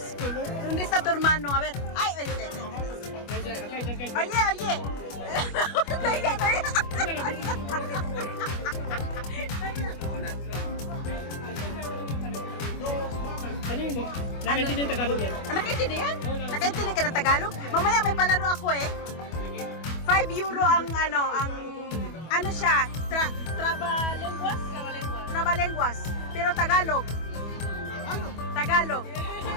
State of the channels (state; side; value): late; right; 25 ms